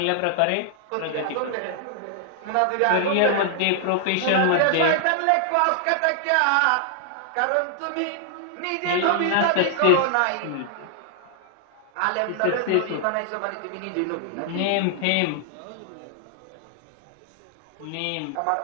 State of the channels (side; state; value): both; different; correlation -0.01